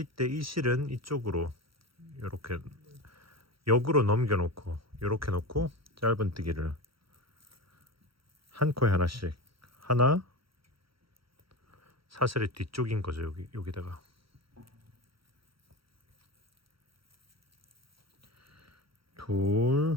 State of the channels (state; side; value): late; left; 0.75 ms